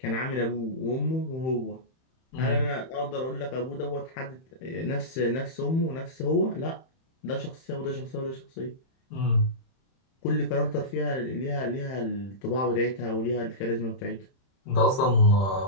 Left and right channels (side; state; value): right; late; 31 ms